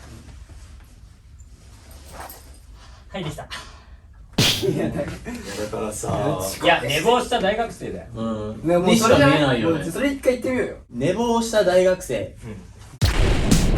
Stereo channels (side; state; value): both; identical; correlation 1.00